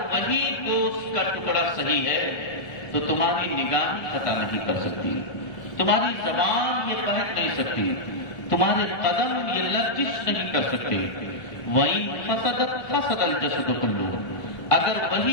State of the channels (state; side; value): late; right; 1.3 ms